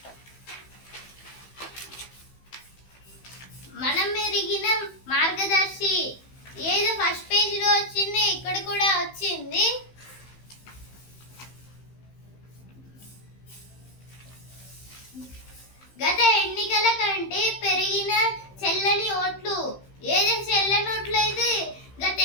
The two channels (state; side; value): late; right; 15 ms